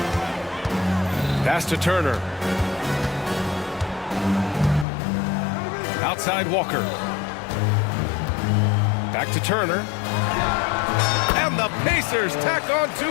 Pass to Turner. Outside Walker. Back to Turner. And the Pacers tack on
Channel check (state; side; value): drops out; right; at 4.9 s